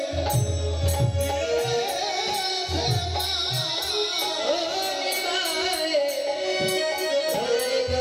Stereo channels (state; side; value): identical; both; correlation 1.00